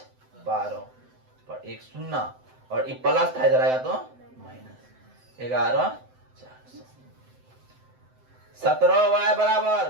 12 पर 1 शून्य और ये प्लस था इधर आएगा तो माइनस 11400। 17y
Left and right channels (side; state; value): left; late; 7.8 ms